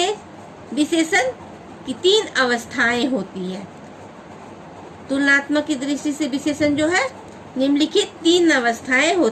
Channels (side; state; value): both; identical; correlation 1.00